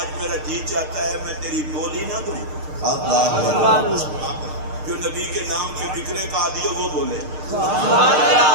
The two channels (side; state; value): left; late; 6.6 ms